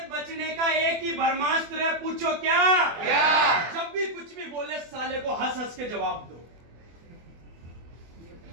बचने का एक ही ब्रह्मास्त्र है, पूछो क्या? जब भी कुछ भी बोले साले को हंस हंस के जवाब दो।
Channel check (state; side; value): late; left; 24 ms